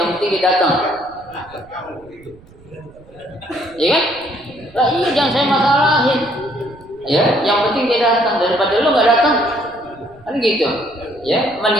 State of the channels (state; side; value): noise; right; rumble, 25 dB below the sound